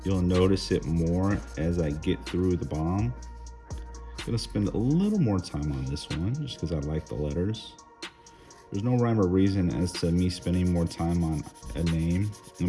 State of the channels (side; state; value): both; identical; correlation 1.00